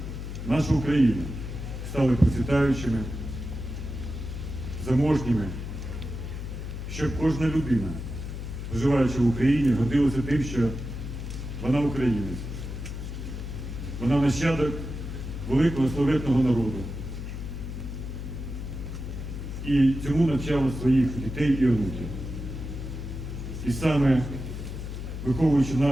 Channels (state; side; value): noise; left; hum, 7 dB below the sound